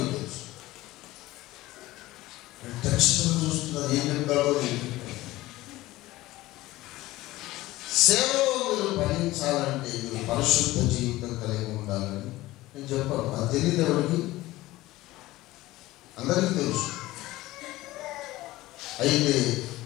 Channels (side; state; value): right; quieter; 17.8 dB